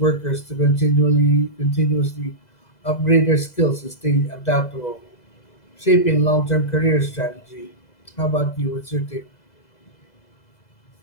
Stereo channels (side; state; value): right; late; 2.0 ms